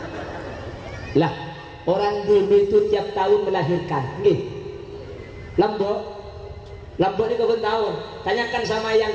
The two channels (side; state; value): both; identical; correlation 1.00